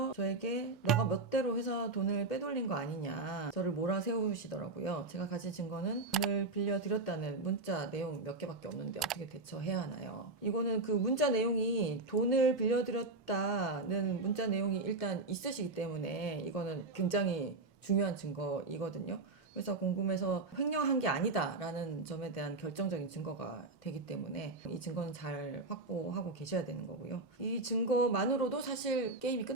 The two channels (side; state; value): left; quieter; 3.3 dB